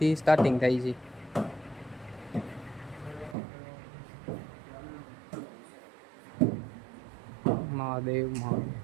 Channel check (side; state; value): left; drops out; at 3.4 s